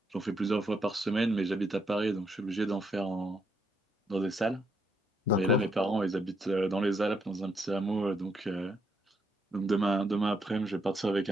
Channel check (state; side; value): normal; both; correlation 0.76